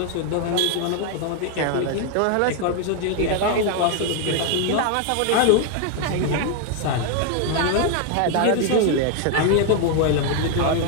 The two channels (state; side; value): different; both; correlation 0.00